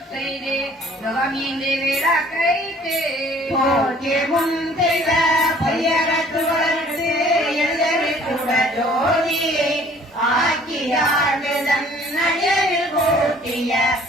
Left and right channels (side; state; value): both; normal; correlation 0.55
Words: செய்து நுகமின்றி விளக்கைத்து போக்கே முன் செய்த பையகத்து வளர்த்து எழுதவிட்டுட ஜோதி ஆக்கியாடுதன் அடிகளில் கூட்டிய